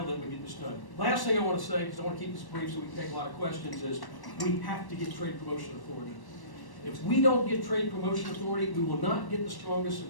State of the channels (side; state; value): right; late; 1.1 ms